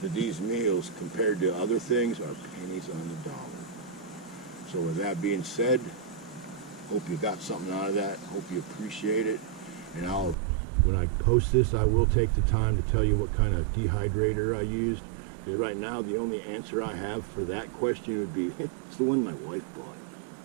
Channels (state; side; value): drops out; left; at 10.4 s